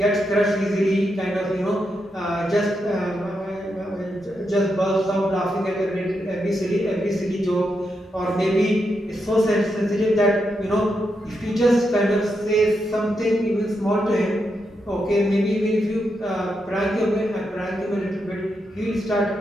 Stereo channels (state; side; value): normal; both; correlation 0.84